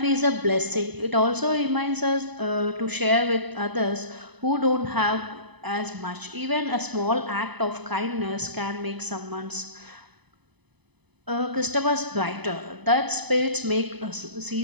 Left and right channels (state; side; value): late; left; 0.99 ms